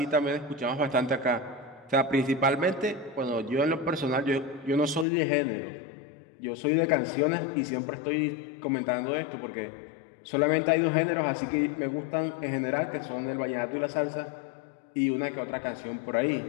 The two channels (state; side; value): drops out; right; at 5.1 s